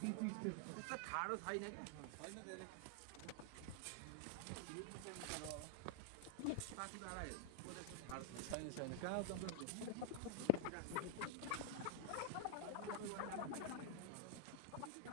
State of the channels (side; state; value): both; different; correlation -0.01